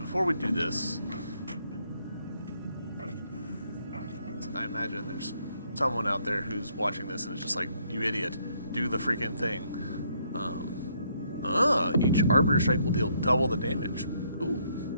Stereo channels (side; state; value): both; inverted; correlation -0.70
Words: we do this, I imagine there's someone out there who's watching this and is just like, you idiot, do the freaking thing. Each Arbiter Strike will deal double the damage. Ooh.